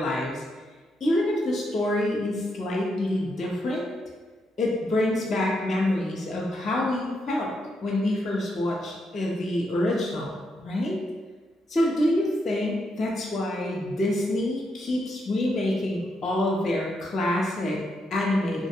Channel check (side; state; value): both; normal; correlation 0.81